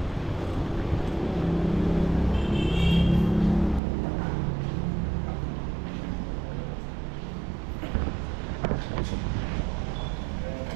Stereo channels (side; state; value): left; drops out; at 3.8 s